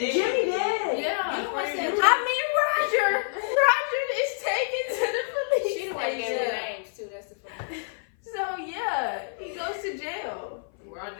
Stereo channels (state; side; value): silent; right; 56 dB below the other